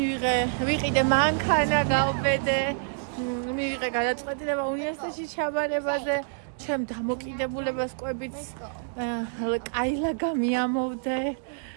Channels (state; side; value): silent; left; digital silence